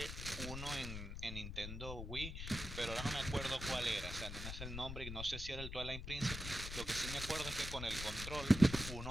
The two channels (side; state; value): left; noise; rumble, 6 dB below the sound